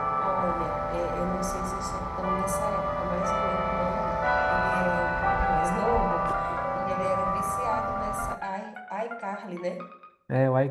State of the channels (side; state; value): both; identical; correlation 1.00